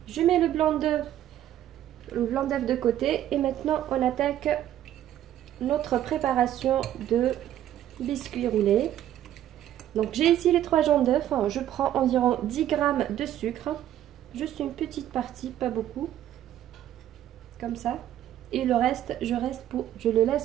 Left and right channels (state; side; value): quieter; left; 11.9 dB